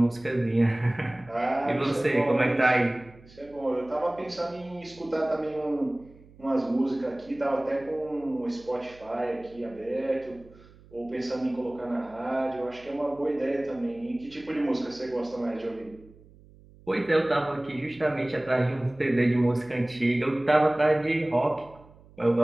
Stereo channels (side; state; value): right; noise; hum, 24 dB below the sound